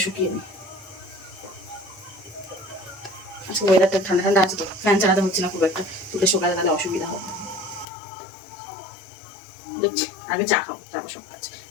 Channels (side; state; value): right; drops out; at 7.9 s